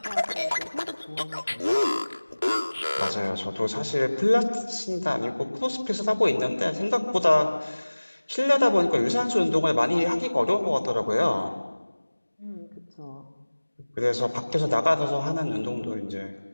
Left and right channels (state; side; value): inverted; both; correlation -1.00